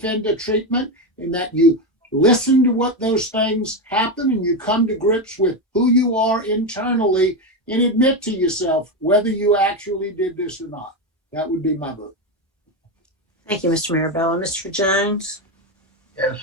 treatment and that you listen to what those things happen and you come to grips with who you are internally and admit to yourself whether you actually did this or not. That would be my vote. Thank you, Mr. Mirabella. Mr. Jones? Yes,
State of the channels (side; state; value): both; normal; correlation 0.12